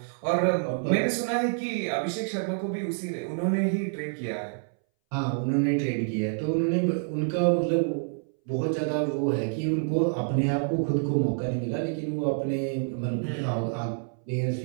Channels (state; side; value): silent; left; 60 dB below the other